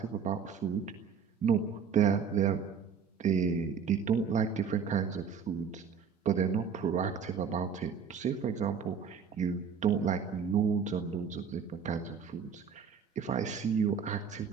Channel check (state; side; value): quieter; left; 6.6 dB